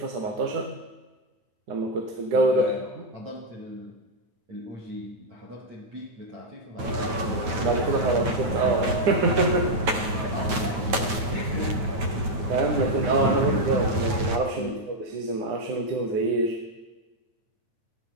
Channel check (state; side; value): late; left; 9.2 ms